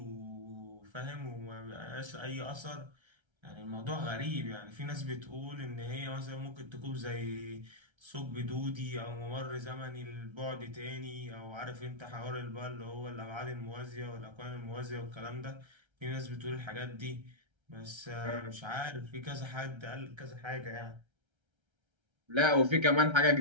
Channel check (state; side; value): late; left; 1.3 ms